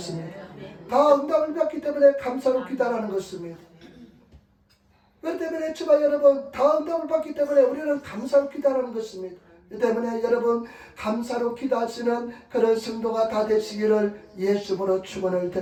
다 응답을 받기 때문에 감사로 기도하는 것입니다. 그렇기 때문에 주마 여러분 다 응답을 받기 때문에 우리는 감사로 기도하는 것입니다. 그 때문에 여러분 감사로 기도하시는 그런 성도가 다 되시기를 예수님으로 축원을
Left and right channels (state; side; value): identical; both; correlation 1.00